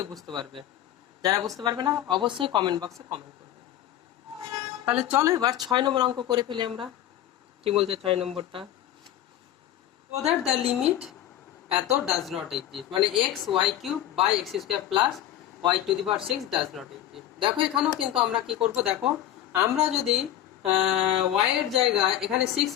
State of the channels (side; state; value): right; quieter; 12.1 dB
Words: বুঝতে পারবে। যারা বুঝতে পারবে না অবশ্যই কমেন্ট বক্সে কমেন্ট করবে। তাহলে চলো এবার 6 নম্বর অঙ্ক করে ফেলি আমরা। কি বলছে 6 নম্বরটা, so that the limit এত ডাজ নট এক্সিস্ট, মানে x y cube by x square plus y to the power 6 does not exist. দেখো এখানেও কিন্তু আমরা কি করব, দেখো আমরা যদি ওয়াই এর জায়গায় এখানে 6